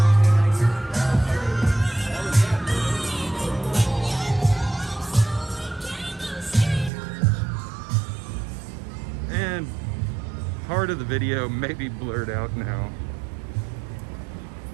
And part of the video may be blurred out now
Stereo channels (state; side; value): drops out; left; at 6.9 s